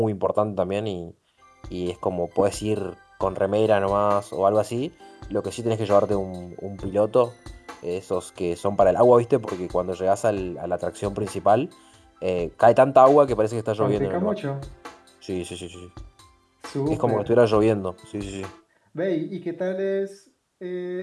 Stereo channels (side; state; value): both; identical; correlation 1.00